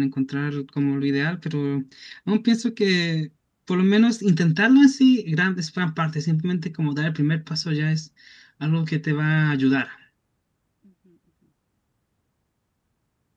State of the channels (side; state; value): both; identical; correlation 1.00